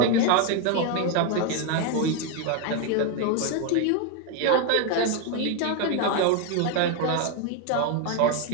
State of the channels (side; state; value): both; different; correlation 0.01